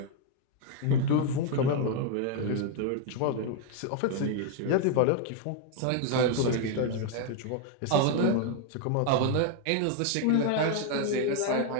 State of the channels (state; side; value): different; both; correlation 0.00